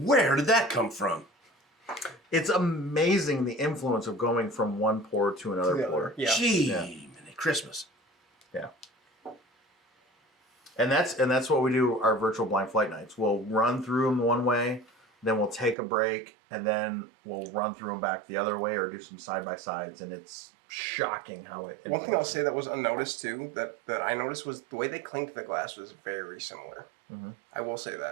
did that come from? It's amazing the influence of going from one pour to another To the pour. other. Yeah. Gee, Yeah. mini Christmas. Yeah. And that's what we do our virtual blind flight nights. We'll run through them one way, then we'll take a break, and then we'll run through them back the other way or do some side by sides, and it's shocking how it. One thing I'll say that was unnoticed too, that I noticed was the way they clinked the glass was very similar. Mhm. I will say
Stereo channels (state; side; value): drops out; left; at 15.8 s